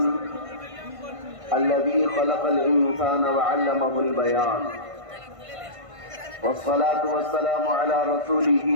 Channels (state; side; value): late; left; 1.5 ms